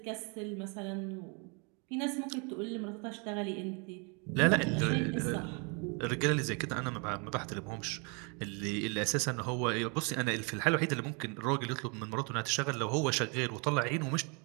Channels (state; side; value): quieter; left; 33.6 dB